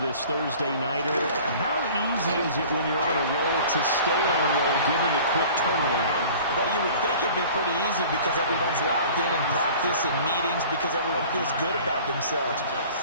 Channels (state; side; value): inverted; both; correlation -0.45